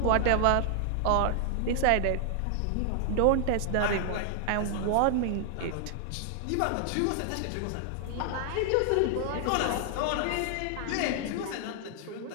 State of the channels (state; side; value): different; both; correlation 0.00